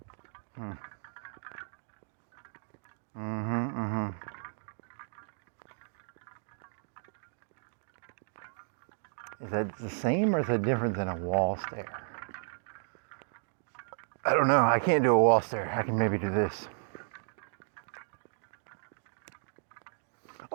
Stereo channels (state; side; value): silent; left; digital silence